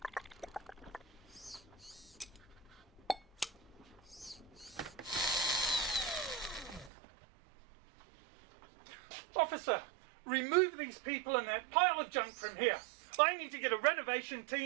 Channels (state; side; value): drops out; left; at 6.9 s